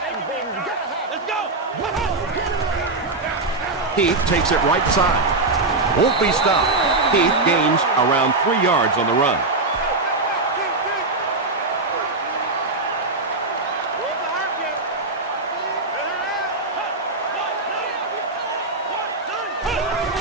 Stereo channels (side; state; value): left; quieter; 3.3 dB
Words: Heath takes it right side. Won't be stopped. Heath gains around 3 yards on the run.